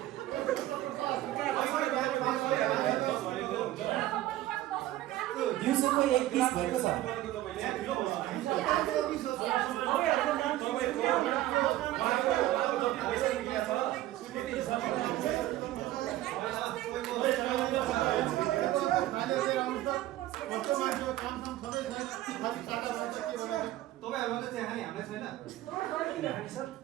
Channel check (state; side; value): quieter; left; 15.0 dB